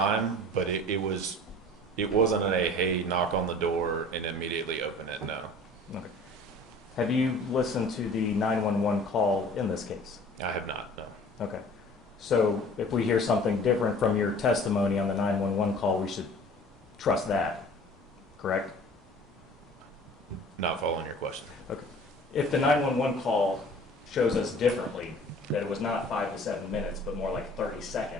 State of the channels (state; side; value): normal; both; correlation 0.47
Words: but it wasn't a, hey, knock on the door and immediately open it, no. Okay. Have you listened to the 911 call in this case? I have not, no. Okay. So if we hear something different from your testimony on the 911 call, we should trust that, correct? Not following your question. Okay. If the 911 call shows us differently, that it was not 5 to 7 minutes, but more like 30